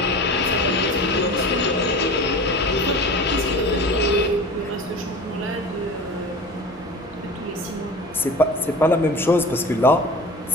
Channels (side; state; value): both; normal; correlation 0.36